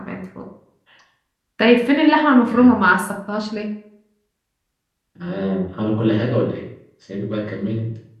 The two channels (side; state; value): both; identical; correlation 1.00